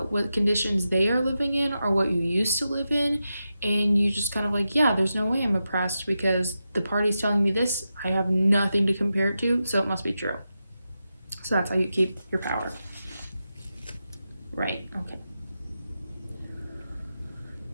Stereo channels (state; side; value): inverted; both; correlation -0.89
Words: what conditions they are living in or what you used to live in. And you just kind of like, yeah, there's no way I'm oppressed because the party's telling me this. I have nothing to compare it to, so it must be true. So that's how you keep your power. Right, okay.